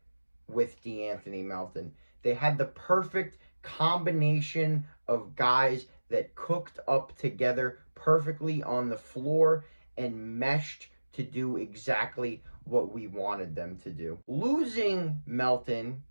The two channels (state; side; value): inverted; both; correlation -1.00